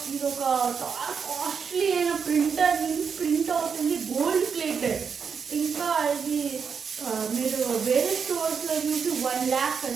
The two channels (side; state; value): left; quieter; 6.3 dB